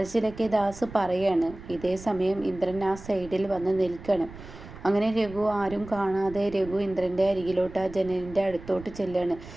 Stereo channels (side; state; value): right; noise; rumble, 16 dB below the sound